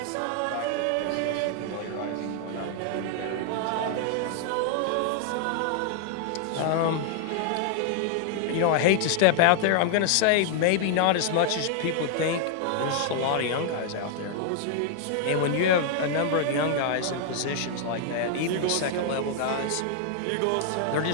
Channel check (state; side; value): different; both; correlation 0.00